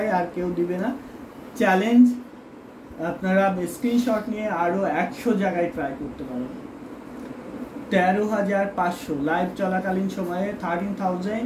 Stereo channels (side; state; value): both; identical; correlation 1.00